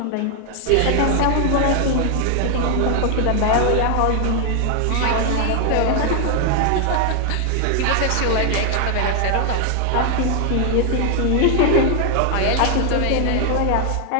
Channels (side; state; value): both; different; correlation 0.00